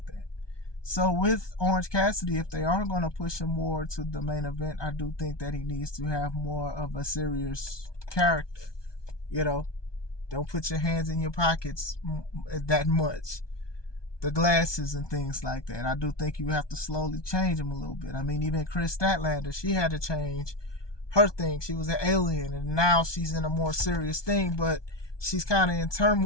that. So with Orange Cassidy, if they are going to push him more to the main event, I do think that he needs to have more of a serious character. Don't put your hands in your pockets that much. The glasses and things like that. I do think you have to slowly change them a little bit. I mean, even Chris Statlander, she had to change her thing. She was an alien, and now she's in a more serious thing, but she's kind of in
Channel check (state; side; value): late; right; 1.2 ms